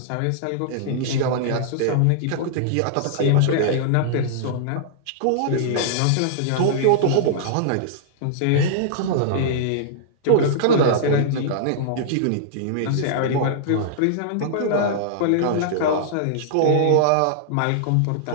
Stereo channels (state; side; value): different; both; correlation -0.02